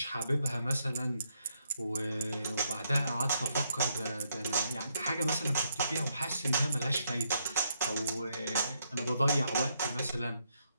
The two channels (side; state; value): both; inverted; correlation -0.76